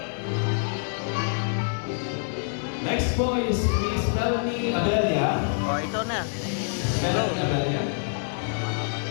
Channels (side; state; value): right; silent; 61 dB below the other